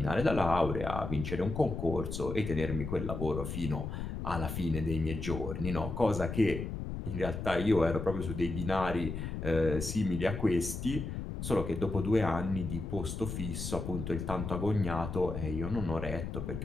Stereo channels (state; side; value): noise; left; rumble, 5 dB below the sound